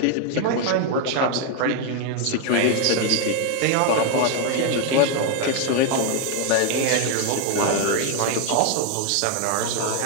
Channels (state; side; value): different; both; correlation 0.01